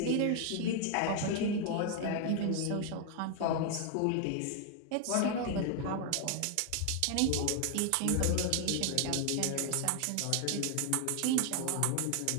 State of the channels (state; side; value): different; both; correlation 0.00